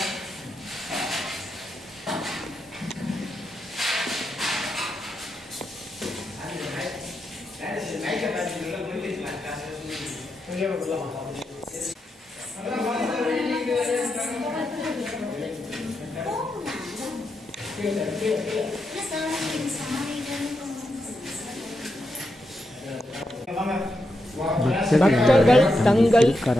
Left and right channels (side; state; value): both; normal; correlation 0.85